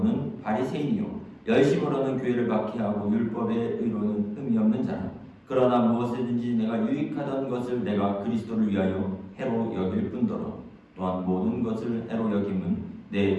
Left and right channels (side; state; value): both; identical; correlation 1.00